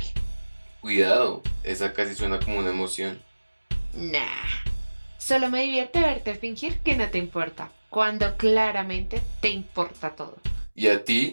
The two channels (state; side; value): inverted; both; correlation -1.00